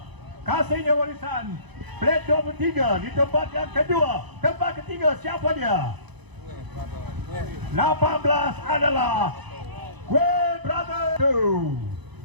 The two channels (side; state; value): left; late; 1.0 ms